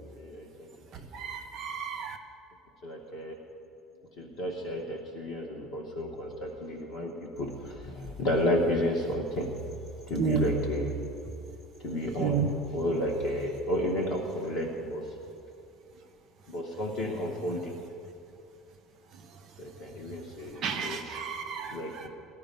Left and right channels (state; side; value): normal; both; correlation 0.34